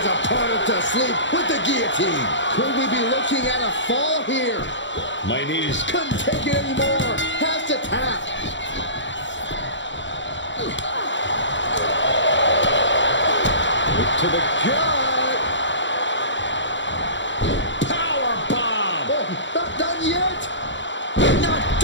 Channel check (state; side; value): late; right; 0.54 ms